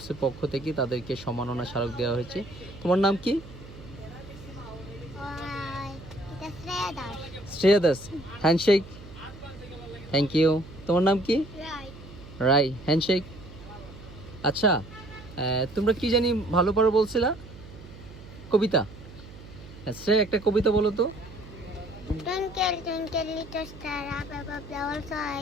পক্ষ থেকে তাদেরকে সম্মাননা স্মারক দেওয়া হয়েছে। তোমার নাম কি? এটা Shreya Das. Shreya Das, handshake. Thank you. তোমার নাম কি? রাই, হ্যান্ডশেক। আচ্ছা, তোমরা কি জানি ভালো পারো বলছিলা? কবিতা। শ্রেয়া, একটা কবিতা বলো তো। Twinkle, twinkle, little star, up above the world, so I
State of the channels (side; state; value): right; noise; hum, 17 dB below the sound